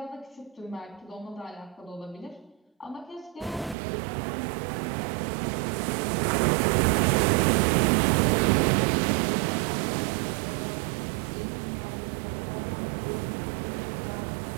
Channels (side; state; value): left; drops out; at 3.8 s